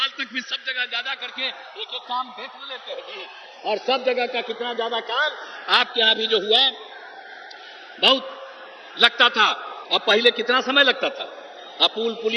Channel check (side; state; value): both; identical; correlation 1.00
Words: तक भी सब जगह ज्यादा करके एक एक काम देख लेते हैं जी, और सब जगह का कितना ज्यादा काम आपके यहां भी जो हुआ बहुत लगता था। और पहले कितना समय लगता था, अब पुल